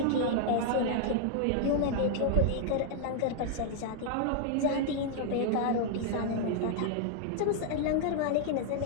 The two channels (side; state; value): both; different; correlation -0.01